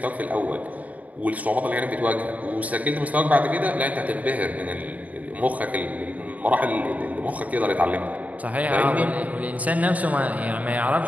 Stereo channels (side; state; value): left; late; 0.072 ms